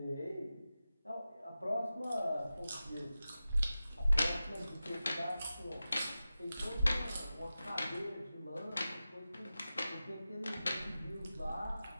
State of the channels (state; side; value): inverted; both; correlation -0.94